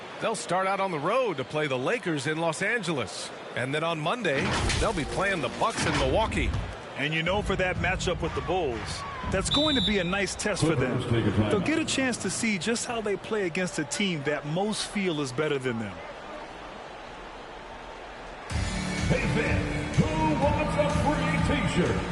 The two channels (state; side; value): identical; both; correlation 1.00